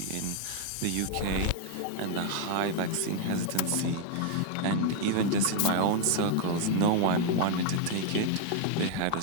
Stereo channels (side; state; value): both; different; correlation 0.00